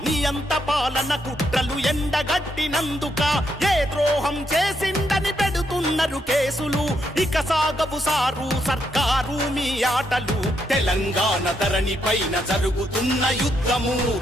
నియంత పాలన కుట్రలు ఎండగట్టినందుక ఏ ద్రోహం చేసిందని పెడుతున్నారు కేసులు ఇక సాగవు సారు సర్కారు మీ ఆటలు తెలంగాణ ధరణి పైన జరుగుతున్న యుద్ధము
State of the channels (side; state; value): both; normal; correlation 0.78